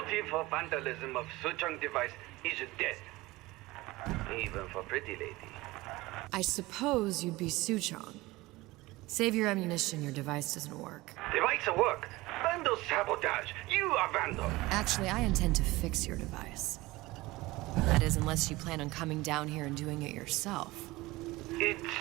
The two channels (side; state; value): left; quieter; 20.1 dB